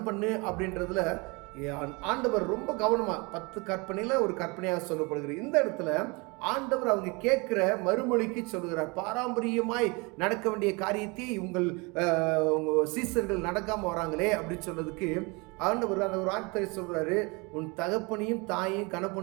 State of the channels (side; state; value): left; quieter; 28.0 dB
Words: பண்ணு அப்படின்றதுல ஆண்டவர் ரொம்ப கவனமாக 10 கற்பனையில் ஒரு கற்பனையாக சொல்லப்படுகிறது. இந்த இடத்துல ஆண்டவர் அவங்க கேட்குற மறுமொழிக்கு சொல்கிறார், பாரம்பரியமாய் நடக்க வேண்டிய காரியத்தை உங்கள் சீசர்கள் நடக்காமல் வராங்களே அப்படின்னு சொன்னதுக்கு ஆண்டவர் அந்த ஒரு வார்த்தை சொல்கிறாரு, உன் தகப்பனையும் தாயையும்